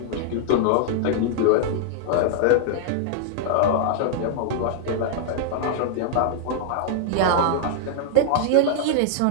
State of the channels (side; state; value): both; different; correlation -0.01